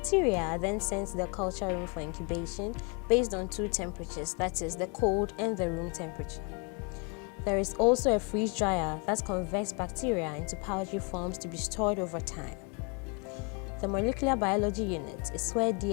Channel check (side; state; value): right; quieter; 33.7 dB